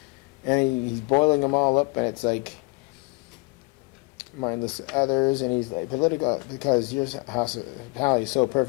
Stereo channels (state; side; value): quieter; right; 29.0 dB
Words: And he's boiling them all up, and it's like, mindless others, and he's like, political, because your hospitality is so